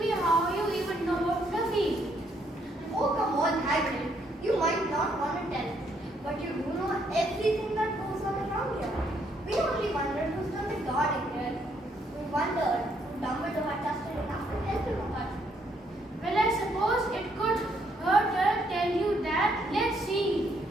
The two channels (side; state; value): both; normal; correlation 0.71